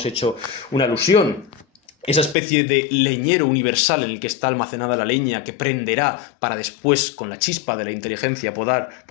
hecho una alusión, esa especie de leñero universal en el que está almacenada la leña que prenderá para después, con la chispa de la inteligencia,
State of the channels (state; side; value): drops out; right; at 2.4 s